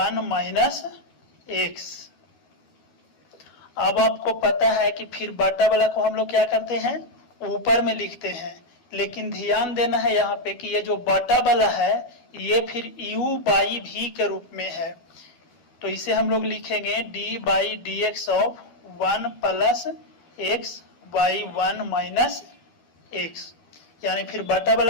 minus x. अब आपको पता है कि फिर बटा वाला को हम लोग क्या करते हैं, ऊपर में लिखते हैं, लेकिन ध्यान देना है यहाँ पे कि ये जो बटा वाला है ये फिर u बाई v के रूप में है। तो इसे हम लोग लिखेंगे d by d x of 1 plus x by 1 minus x, यानी फिर बटा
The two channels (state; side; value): late; right; 12 ms